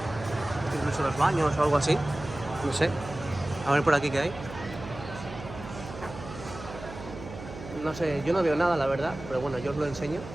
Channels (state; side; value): noise; right; hum, 13 dB below the sound